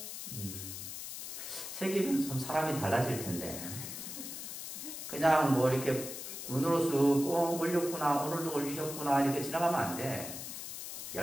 새기면 좀 사람이 달라질 텐데 그냥 뭐 이렇게 눈으로 쑥 올렸구나 오늘도 올리셨구나 이렇게 지나가면 안 돼.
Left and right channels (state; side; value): noise; left; hiss, 8 dB below the sound